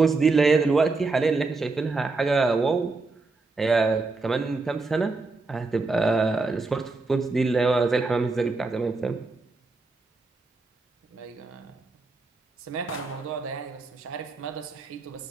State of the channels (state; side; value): quieter; left; 3.7 dB